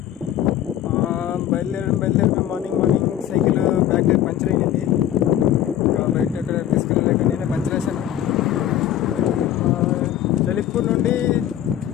బయలుదేరి morning cycle back tyre puncture అయ్యింది. ఇంకా బయట ఎక్కడ తీసుకెళ్ళలేక నేనే పంచర్ వేసాను. లలిత్పూర్ నుండి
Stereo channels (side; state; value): right; quieter; 11.5 dB